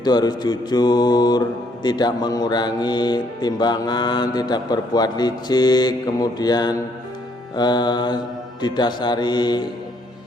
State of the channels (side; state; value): both; normal; correlation 0.69